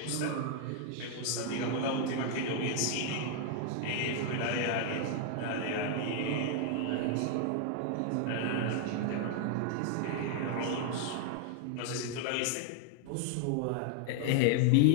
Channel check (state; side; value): different; both; correlation 0.00